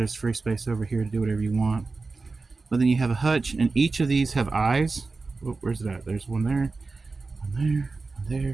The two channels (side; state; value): left; quieter; 3.9 dB